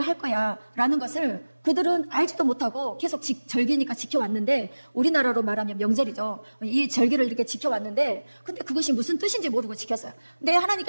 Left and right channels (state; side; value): inverted; both; correlation -1.00